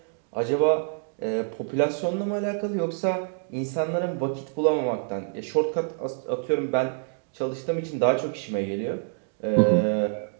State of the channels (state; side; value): silent; left; 60 dB below the other